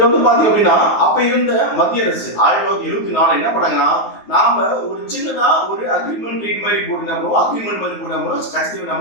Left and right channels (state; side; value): late; right; 9.5 ms